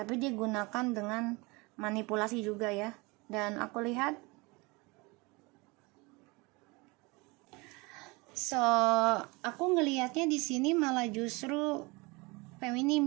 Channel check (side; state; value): left; quieter; 25.8 dB